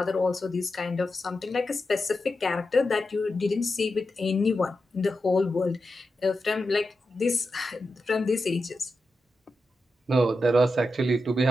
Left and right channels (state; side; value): normal; both; correlation 0.89